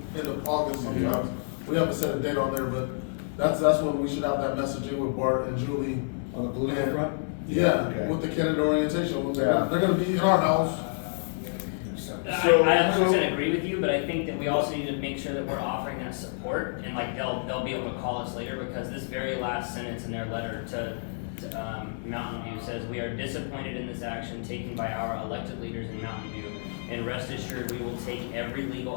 end of August sometimes. We haven't set a date on there, but that's when we should have that messaging with Bart and Julie. On the political front? Yeah, Okay. with the candidate orientation. Yeah. They're gonna be in our house. I 100% agree with you, but I think that we also need to make sure that we're offering that support, and like they'll be able to call us later, because this very last sentence in their letter to Mountain View says, "We are disappointed in this action taken by our elected leaders in Mountain View, and rest assured we will take every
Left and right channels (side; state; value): right; silent; digital silence